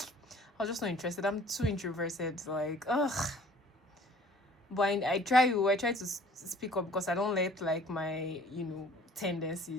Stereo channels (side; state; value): both; normal; correlation 0.52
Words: I was just not interested. I'm too introverted. Like, ugh. But I try to speak up because I don't let like my